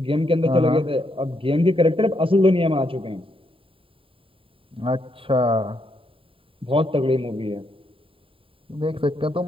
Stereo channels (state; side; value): late; left; 0.26 ms